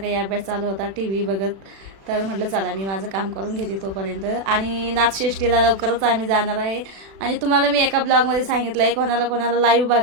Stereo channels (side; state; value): left; late; 36 ms